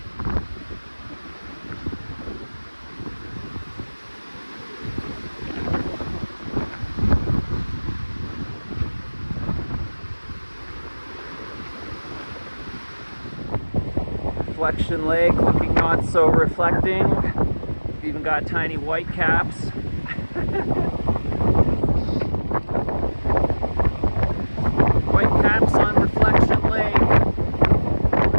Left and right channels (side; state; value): both; inverted; correlation -1.00